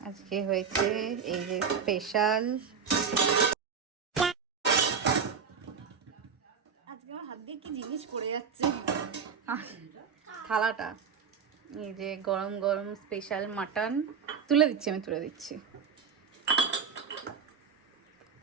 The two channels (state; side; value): quieter; left; 6.4 dB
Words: আজকে হয়েছে এই যে স্পেশাল, আজকে আমার হাত দিয়ে কি জিনিস পড়ে যাচ্ছে, থালাটা। এই যে গরম গরম স্পেশাল মাটন তুলে দিচ্ছি, আমি তুলে দিচ্ছি।